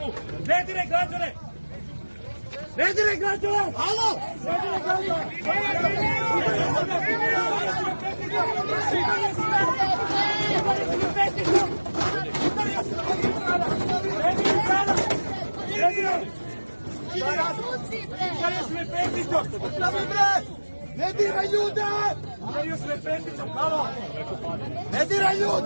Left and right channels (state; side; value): inverted; both; correlation -1.00